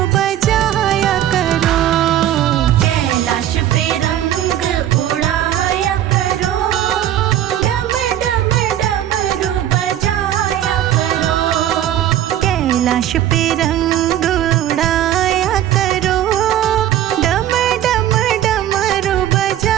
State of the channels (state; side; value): quieter; left; 11.8 dB